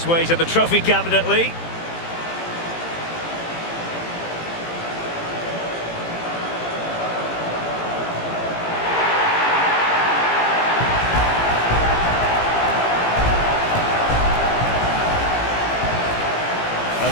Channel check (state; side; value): late; right; 18 ms